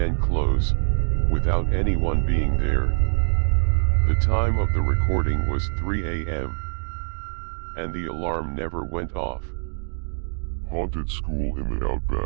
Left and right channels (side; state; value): left; silent; 63 dB below the other